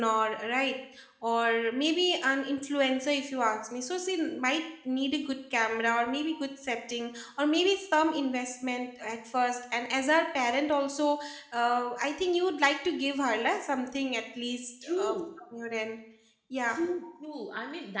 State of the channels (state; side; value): identical; both; correlation 1.00